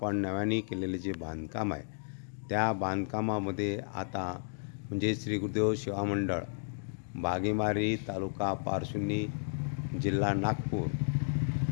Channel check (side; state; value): right; silent; digital silence